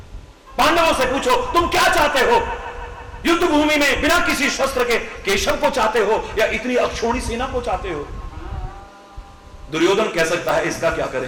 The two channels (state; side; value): identical; both; correlation 1.00